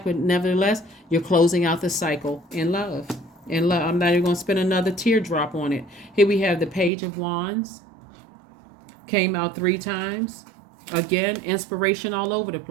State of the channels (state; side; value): drops out; left; at 6.9 s